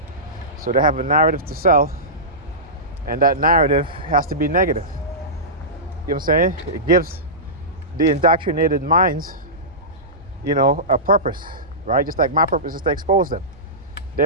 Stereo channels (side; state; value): both; normal; correlation -0.18